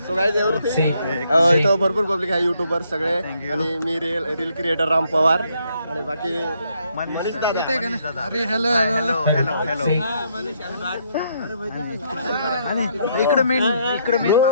इथं भरपूर पब्लिक आहे युट्यूबर सगळे. आणि मी रील क्रिएटर राम पवार आणि बाकी अरे हॅलो हॅलो हॅलो. आणि इकडे मेन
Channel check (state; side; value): inverted; both; correlation -0.72